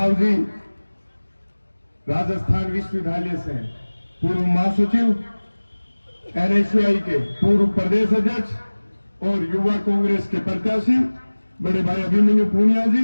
जी, राजस्थान विश्वविद्यालय से पूर्व महासचिव, एनएसयूआई के पूर्व प्रदेश अध्यक्ष और युवा कांग्रेस के प्रत्याशी बड़े भाई अभिमन्यु पूनिया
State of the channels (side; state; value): both; inverted; correlation -1.00